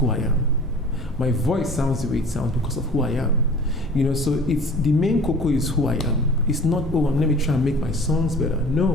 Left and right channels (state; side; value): normal; both; correlation 0.43